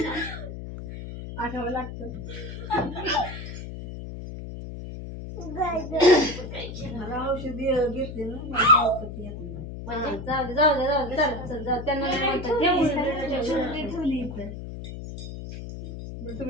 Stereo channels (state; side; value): noise; left; hum, 9 dB below the sound